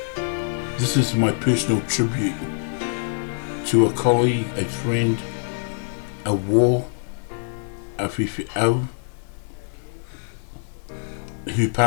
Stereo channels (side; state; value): right; silent; digital silence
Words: This is my personal tribute to a colleague, a friend, a war, a Fi'au, who